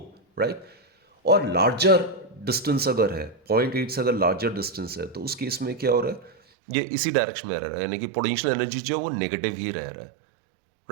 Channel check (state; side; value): drops out; left; at 6.4 s